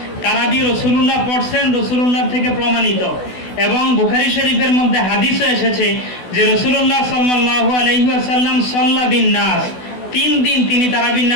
তারাবি রাসূলুল্লাহ পড়ছেন, রাসূলুল্লাহ থেকে প্রমাণিত। এবং বুখারী শরীফের মধ্যে হাদিসে এসেছে যে রাসূলুল্লাহ সাল্লাল্লাহু আলাইহি ওয়াসাল্লাম সাল্লা বিন নাস, 3 দিন তিনি তারাবির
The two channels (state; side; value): late; right; 16 ms